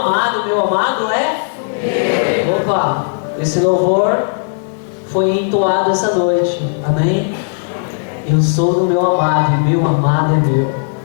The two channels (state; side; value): silent; right; digital silence